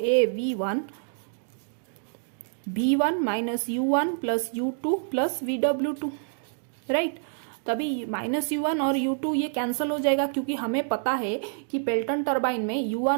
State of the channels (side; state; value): left; silent; digital silence